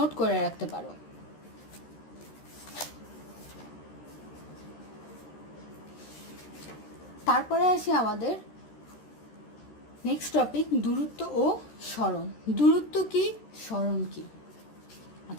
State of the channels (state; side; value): late; right; 13 ms